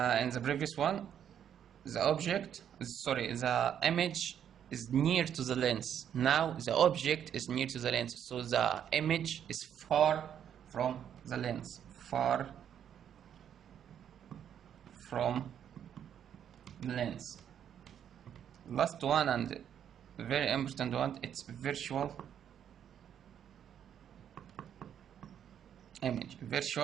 the previous one, the image is near to the lens. Now the object is near to the lens, so the image is far from the lens. Far from the lens. Last one and very important one, it's virtual image.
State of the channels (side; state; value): left; quieter; 9.2 dB